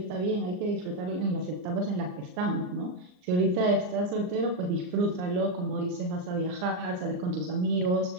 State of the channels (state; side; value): late; left; 39 ms